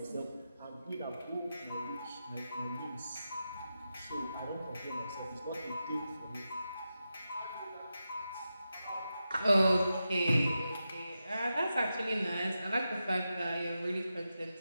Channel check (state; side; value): inverted; both; correlation -0.90